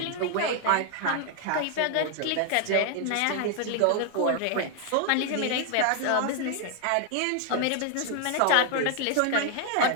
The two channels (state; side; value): different; both; correlation 0.00